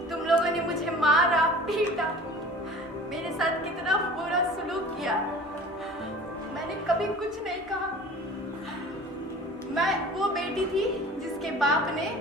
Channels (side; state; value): both; normal; correlation 0.42